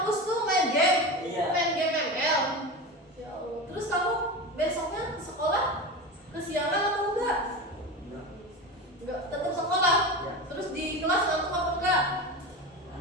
tuh main game? Iya. Main game ML? Ya Allah. Terus kamu besoknya sekolah kesiangan atau enggak? Enggak, tetap sekolah. Iya. Terus di kelas ngantuk apa enggak?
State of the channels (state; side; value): normal; both; correlation 0.25